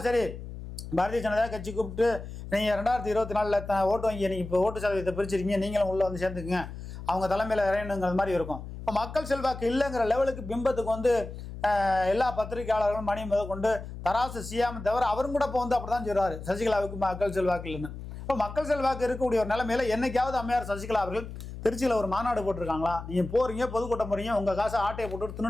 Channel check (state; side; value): noise; left; hum, 10 dB below the sound